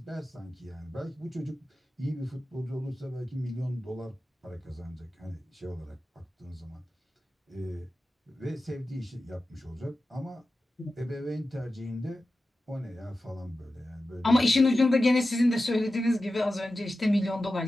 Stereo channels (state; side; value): normal; both; correlation 0.93